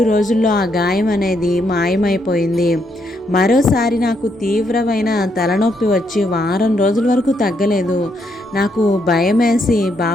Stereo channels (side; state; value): both; normal; correlation 0.76